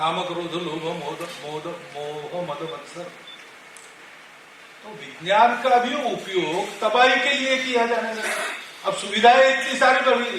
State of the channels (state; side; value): identical; both; correlation 1.00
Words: क्रोध, लोभ, मोह, मद, मत्सर। तो विज्ञान का भी उपयोग तबाही के लिए किया जाने लगा। अब सुविधाएं इतनी सारी